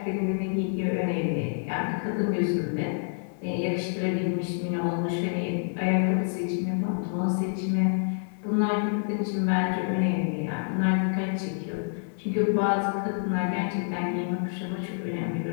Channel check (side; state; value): right; silent; 60 dB below the other